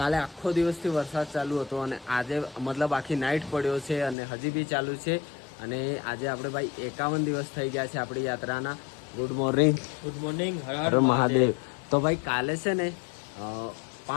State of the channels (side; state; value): right; drops out; at 4.2 s